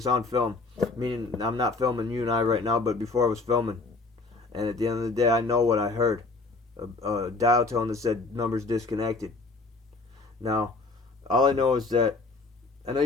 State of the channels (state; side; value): quieter; right; 3.7 dB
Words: on film. Meaning I'm not filming you and I right now, but before I was filming. And at the end of the day, I know what I heard. A dial tone that said numbers disconnected. Now, all I know is that I know